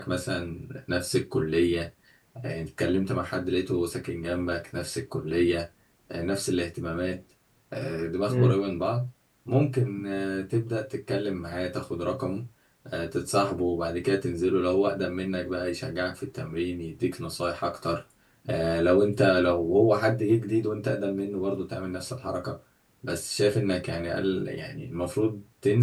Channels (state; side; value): identical; both; correlation 1.00